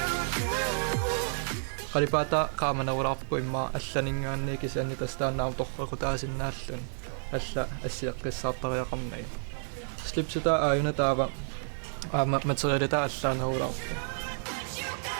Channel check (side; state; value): left; silent; digital silence